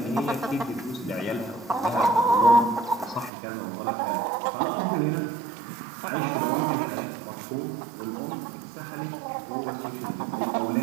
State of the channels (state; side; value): drops out; left; at 3.3 s